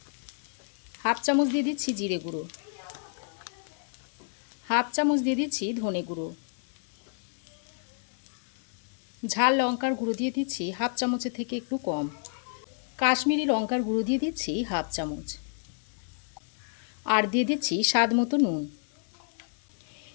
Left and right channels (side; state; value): right; silent; 58 dB below the other